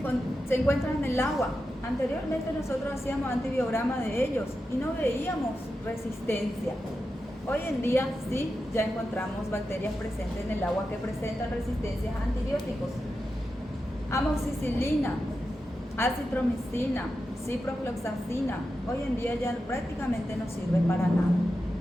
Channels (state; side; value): normal; both; correlation 0.90